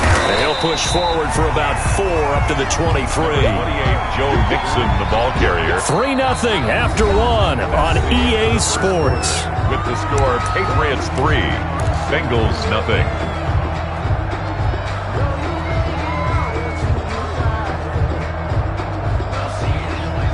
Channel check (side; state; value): both; identical; correlation 1.00